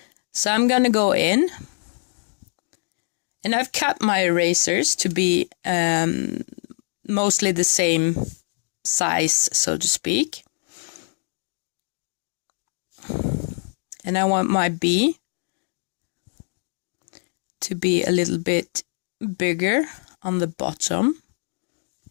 So I'm gonna go in, and I've cut my erasers to be mostly the same size, so to speak. And I want my B to be a little bit bigger on the bottom.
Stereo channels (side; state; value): right; silent; digital silence